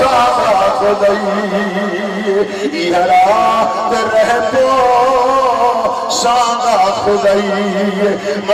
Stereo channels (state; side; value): identical; both; correlation 1.00